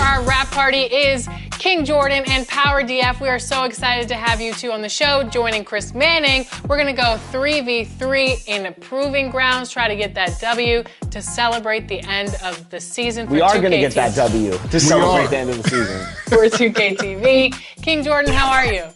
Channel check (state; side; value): identical; both; correlation 1.00